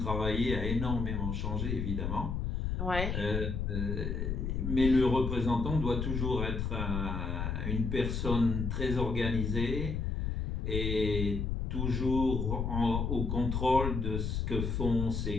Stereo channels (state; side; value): noise; left; rumble, 1 dB below the sound